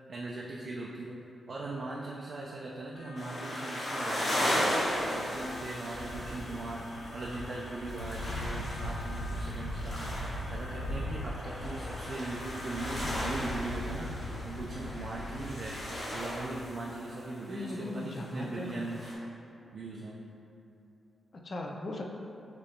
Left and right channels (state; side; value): normal; both; correlation 0.83